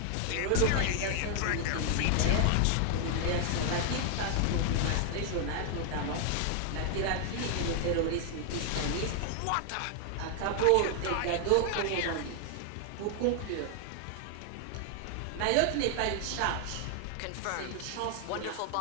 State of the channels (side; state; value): both; different; correlation 0.00